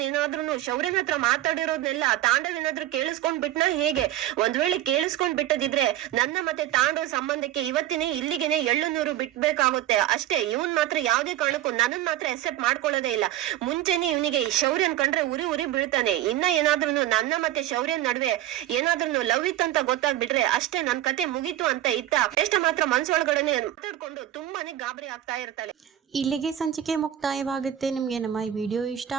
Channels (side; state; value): left; quieter; 12.9 dB